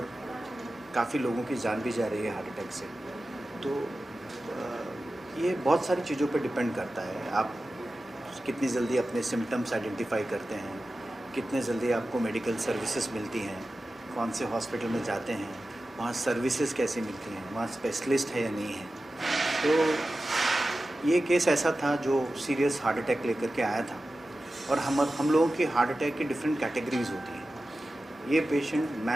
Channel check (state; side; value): normal; both; correlation 0.94